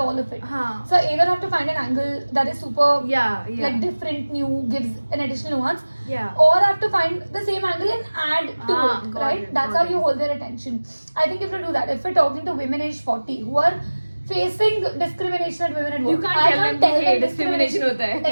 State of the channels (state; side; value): inverted; both; correlation -1.00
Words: of it. Huh. So I either have to find an angle that is super Yeah. like different, new, gives an additional nuance, Yeah. or I have to find the same angle and add to it, got right? it, That's got how it. you hold their attention. I think if you do that, if we're talking to women age 40 who are facing discrimination at women at work, You can't I tell can't them tell hey, them discrimination hota hai.